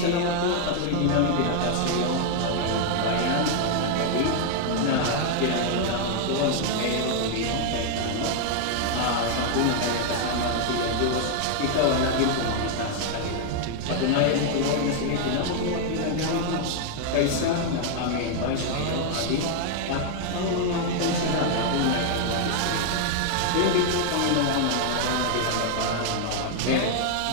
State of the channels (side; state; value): both; different; correlation 0.00